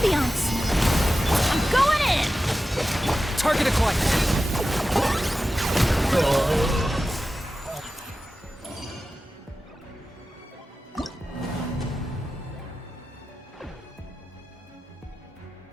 I'm going in! Target acquired.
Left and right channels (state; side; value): normal; both; correlation 0.94